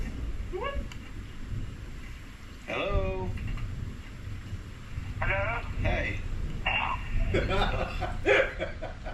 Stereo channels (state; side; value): identical; both; correlation 1.00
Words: Hello? Hello? Hey.